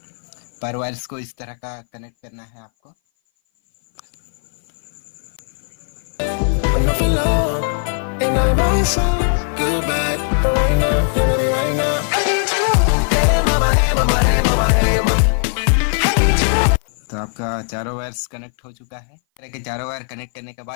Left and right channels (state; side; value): silent; right; 58 dB below the other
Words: पर वायर्स को इस तरह का कनेक्ट करना है आपको। When I feel love, and I want some good bad, but right now, right now. Hey mama, hey mama, hey mama. चारों वायर्स कनेक्ट हो चुका है। इस तरह के चारों वायर कनेक्ट करने के